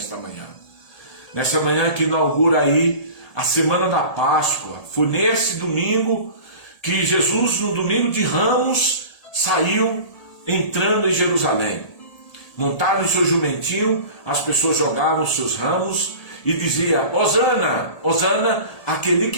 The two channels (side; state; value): right; late; 1.8 ms